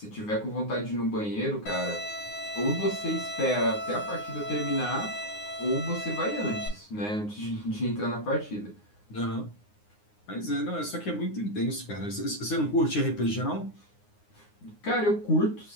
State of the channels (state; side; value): late; right; 9.6 ms